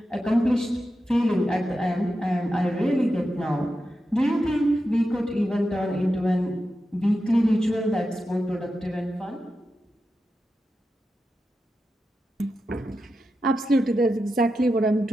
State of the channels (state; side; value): normal; both; correlation 0.90